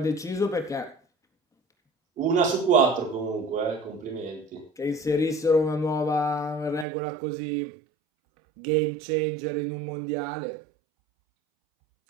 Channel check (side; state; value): left; drops out; at 6.9 s